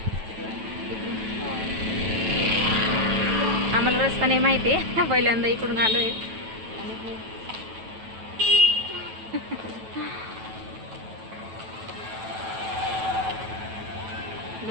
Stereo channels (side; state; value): left; late; 9.1 ms